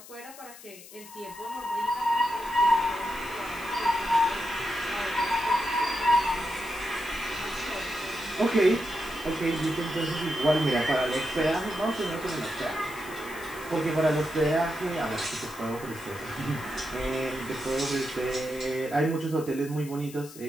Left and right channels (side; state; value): left; noise; hiss, 17 dB below the sound